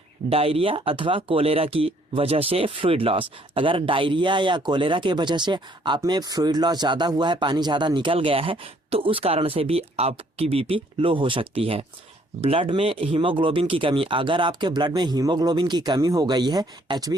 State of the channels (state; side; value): normal; both; correlation 0.64